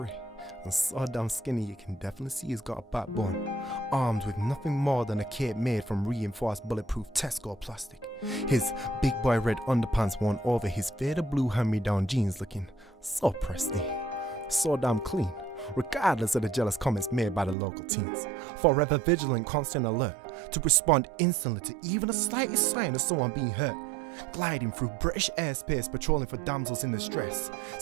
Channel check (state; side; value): drops out; left; at 17.6 s